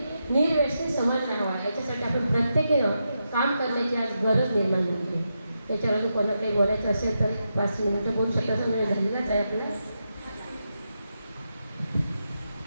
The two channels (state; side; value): inverted; both; correlation -0.86